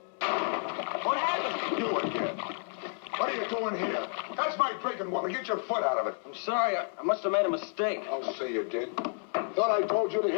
What happened? You again. What are you doing here? That's my drinking water. Get your foot out of it. I'm sorry. I must have made a mistake. I'll say you did. Thought I told you to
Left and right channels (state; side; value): silent; right; 56 dB below the other